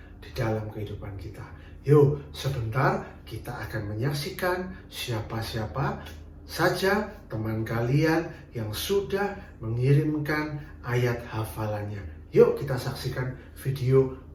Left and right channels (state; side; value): identical; both; correlation 1.00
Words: di dalam kehidupan kita. Yuk, sebentar kita akan menyaksikan siapa-siapa saja teman kalian yang sudah mengirimkan ayat hafalannya. Yuk kita saksikan video